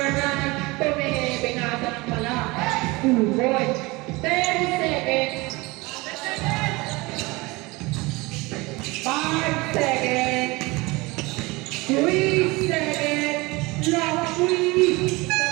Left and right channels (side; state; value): left; quieter; 23.4 dB